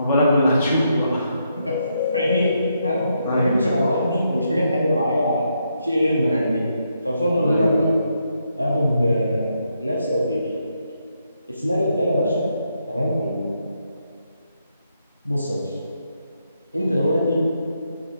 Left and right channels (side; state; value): both; inverted; correlation -0.79